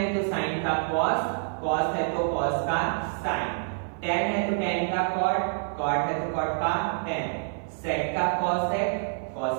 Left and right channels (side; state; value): left; silent; 57 dB below the other